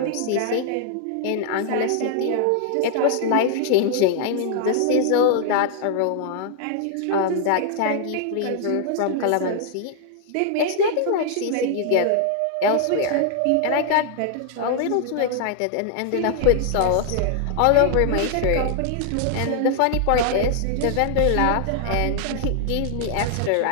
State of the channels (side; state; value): both; different; correlation 0.00